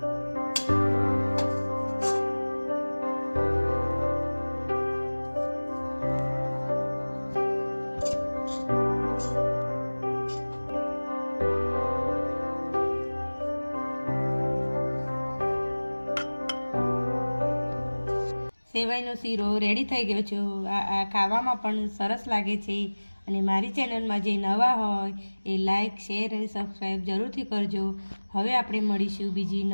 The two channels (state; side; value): inverted; both; correlation -1.00